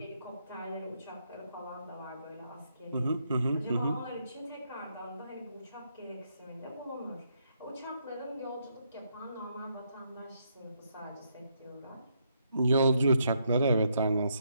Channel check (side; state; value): both; inverted; correlation -0.76